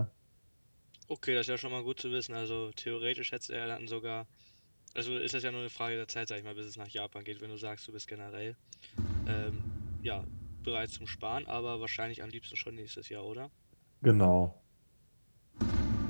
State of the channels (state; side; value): inverted; both; correlation -1.00